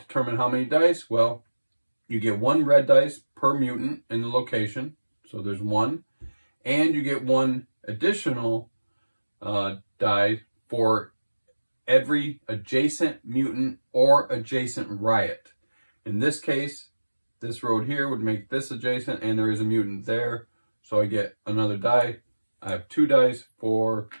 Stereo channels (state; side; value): inverted; both; correlation -1.00